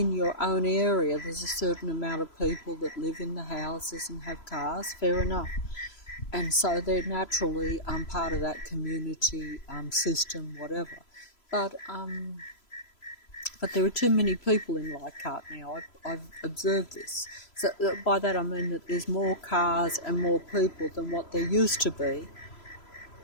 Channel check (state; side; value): late; right; 3.0 ms